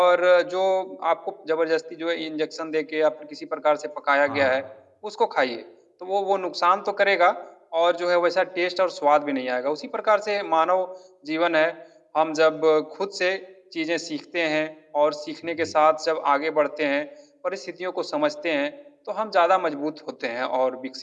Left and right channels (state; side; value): identical; both; correlation 1.00